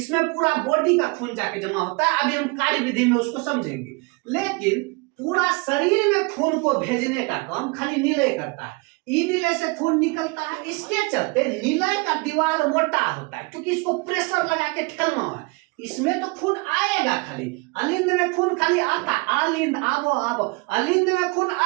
पूरा बॉडी का खून जाके जमा होता है। अभी हम कार्य विधि में उसको समझेंगे, लेकिन पूरा शरीर में खून को भेजने का काम खाली निलय करता है। ई निलय से खून निकलता है, इसके चलते निलय का दीवार मोटा होता है क्योंकि इसको प्रेशर लगा के ठेलना है। इसमें तो खून आएगा, खाली अलिंद में खून खाली आता है। अलिंद आवो आवो, अलिंद में खून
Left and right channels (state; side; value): quieter; left; 28.4 dB